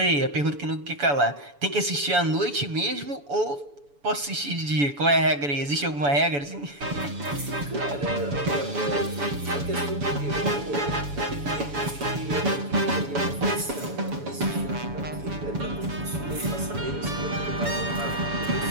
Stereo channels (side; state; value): left; late; 7.0 ms